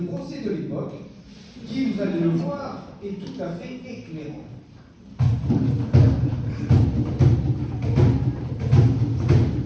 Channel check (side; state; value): both; identical; correlation 1.00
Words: de l'époque qui, vous allez le voir, est tout à fait éclairant.